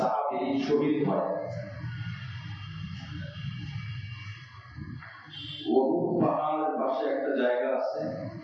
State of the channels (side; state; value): both; identical; correlation 1.00